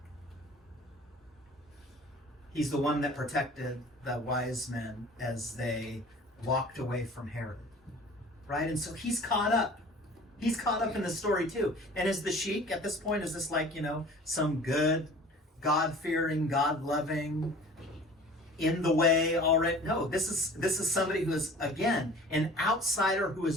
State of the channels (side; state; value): both; normal; correlation 0.45